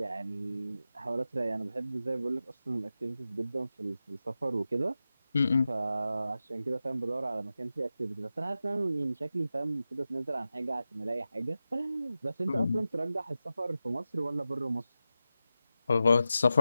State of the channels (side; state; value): both; inverted; correlation -0.92